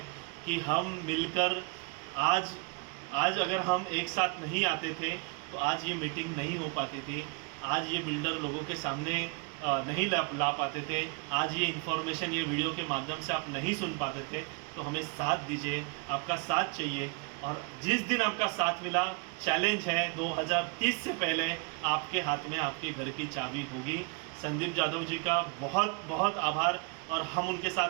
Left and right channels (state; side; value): quieter; left; 32.9 dB